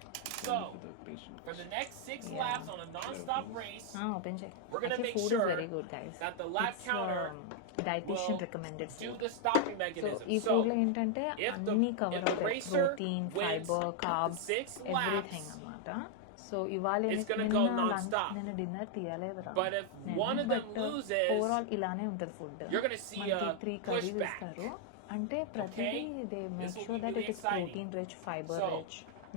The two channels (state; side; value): different; both; correlation 0.00